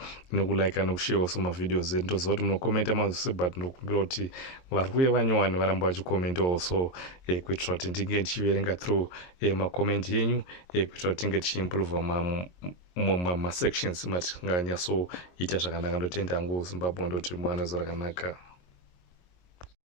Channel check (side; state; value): right; late; 22 ms